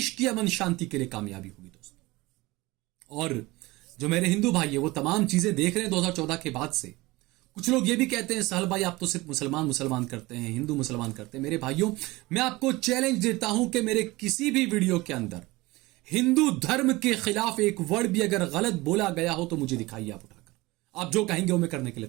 की अमन शांति के लिए कामयाबी होगी दोस्तों। और जो मेरे हिंदू भाई है वो तमाम चीजें देख रहे हैं 2014 के बाद से। कुछ लोग ये भी कहते हैं सहल भाई आप तो सिर्फ मुसलमान करते हैं, हिंदू मुसलमान करते हैं। मेरे भाइयों, मैं आपको चैलेंज देता हूं कि मेरे किसी भी वीडियो के अंदर हिंदू धर्म के खिलाफ एक वर्ड भी अगर गलत बोला गया हो तो मुझे दिखाइए आप उठाकर। आप जो कहेंगे वो मैं करने के लिए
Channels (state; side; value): quieter; left; 21.1 dB